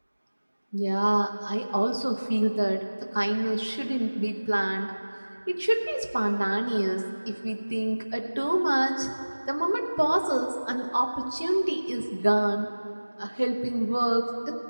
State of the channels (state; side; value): inverted; both; correlation -1.00